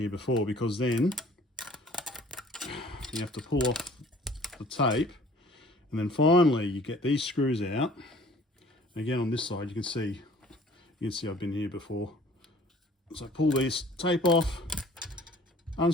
before, because then you have to pull off the tape, and then finally you get these screws out. Again, on this side, you can see I've been here before. So pull these tape off,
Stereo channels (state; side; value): normal; both; correlation 0.52